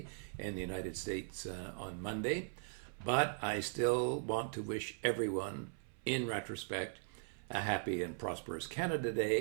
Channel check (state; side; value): silent; left; 51 dB below the other